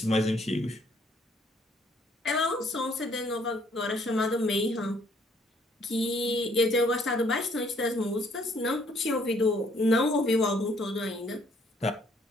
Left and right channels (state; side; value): normal; both; correlation 0.65